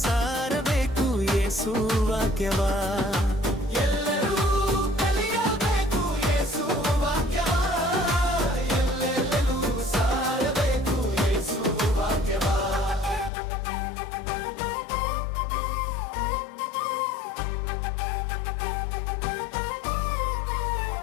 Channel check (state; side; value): drops out; right; at 13.3 s